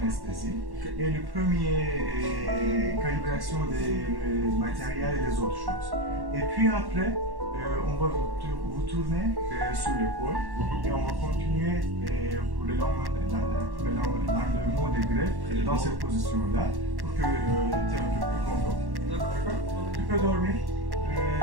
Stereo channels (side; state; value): left; late; 1.1 ms